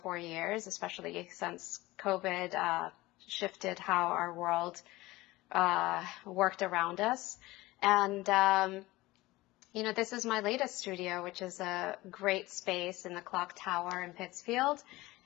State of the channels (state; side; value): quieter; right; 19.3 dB